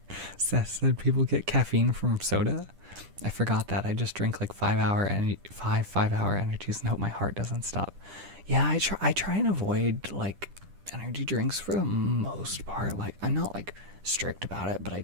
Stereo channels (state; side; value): late; left; 10 ms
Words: said people get caffeine from soda. I forgot that. I just drink like 5 hour energies and hope my heart doesn't stop. Yeah, I try and avoid like energy drinks for the most part. Like, I'm not like strict about it, but I